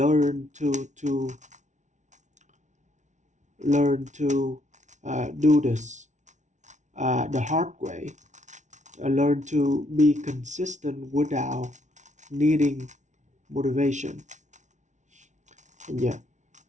to do this the hard way, learn to be consistent without needing motivation. And yeah,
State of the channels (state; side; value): late; left; 0.35 ms